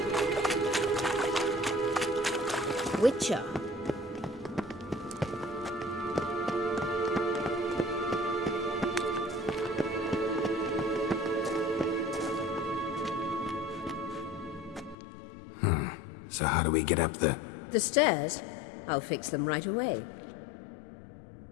Witcher. So how do we get up the... The stairs? I'll fix them right away.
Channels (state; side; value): drops out; right; at 15.0 s